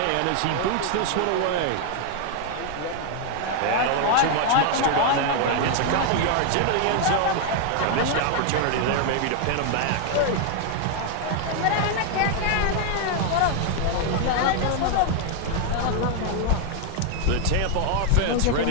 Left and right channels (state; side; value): different; both; correlation 0.00